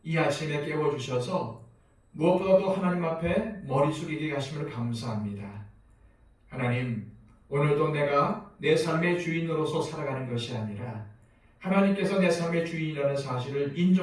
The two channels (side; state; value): both; identical; correlation 1.00